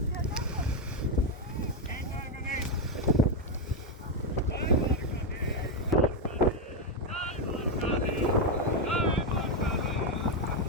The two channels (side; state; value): both; normal; correlation 0.05